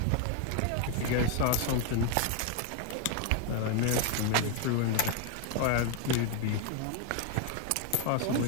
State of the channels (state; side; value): different; both; correlation 0.01